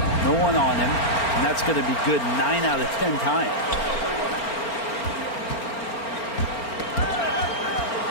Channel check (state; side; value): late; right; 4.4 ms